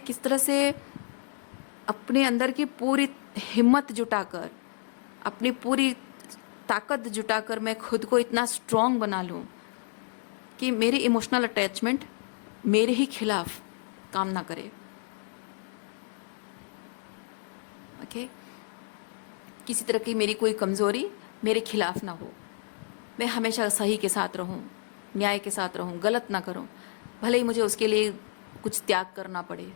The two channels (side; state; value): right; silent; 58 dB below the other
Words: किस तरह से अपने अंदर की पूरी हिम्मत जुटाकर, अपनी पूरी ताकत जुटाकर मैं खुद को इतना स्ट्रांग बना लूँ कि मेरी इमोशनल अटैचमेंट मेरे ही खिलाफ काम ना करे। ओके, किसी तरह की मेरी कोई कमज़ोरी मेरे खिलाफ ना हो, मैं हमेशा सही के साथ रहूं, न्याय के साथ रहूं, गलत ना करूं, भले ही मुझे उसके लिए कुछ त्याग करना पड़े,